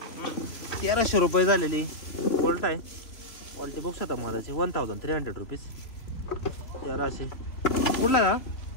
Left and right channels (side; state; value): right; late; 3.0 ms